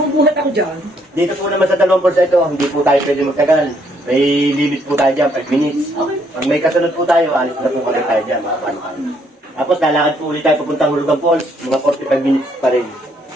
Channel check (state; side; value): normal; both; correlation 0.70